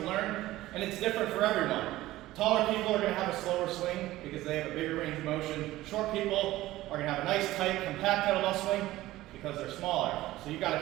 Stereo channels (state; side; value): quieter; left; 16.5 dB